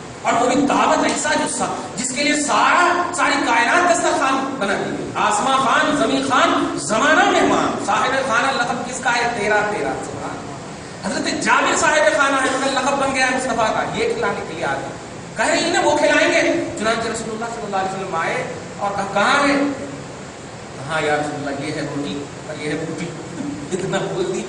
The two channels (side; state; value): both; identical; correlation 1.00